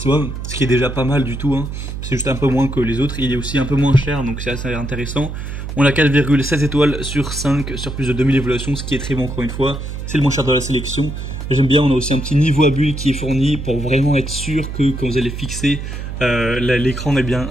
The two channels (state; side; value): noise; right; hum, 7 dB below the sound